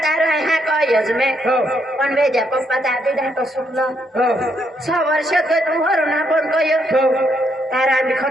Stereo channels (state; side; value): normal; both; correlation 0.75